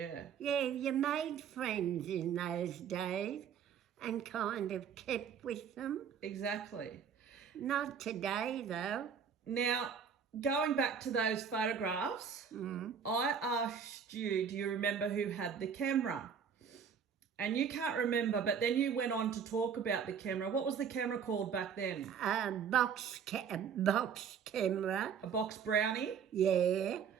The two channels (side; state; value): left; quieter; 7.1 dB